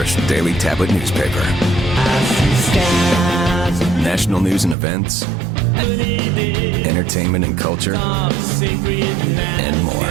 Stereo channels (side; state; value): left; drops out; at 4.8 s